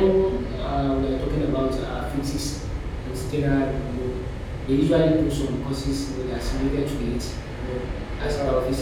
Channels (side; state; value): both; identical; correlation 1.00